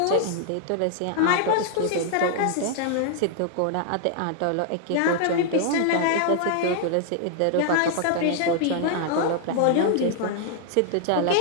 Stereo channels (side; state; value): both; different; correlation 0.00